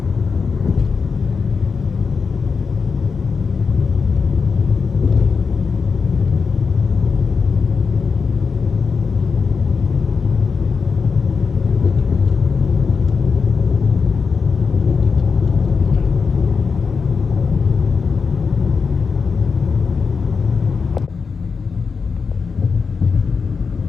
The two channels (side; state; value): right; quieter; 5.3 dB